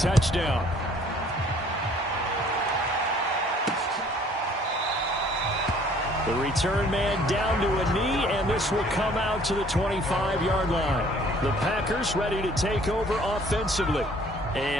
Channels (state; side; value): normal; both; correlation 0.57